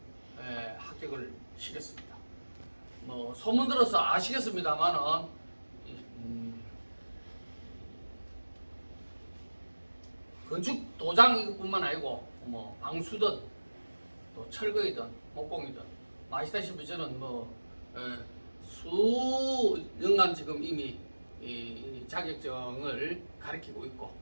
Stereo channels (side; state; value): both; inverted; correlation -1.00